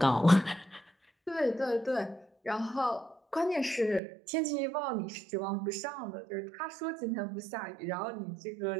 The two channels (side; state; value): left; drops out; at 4.0 s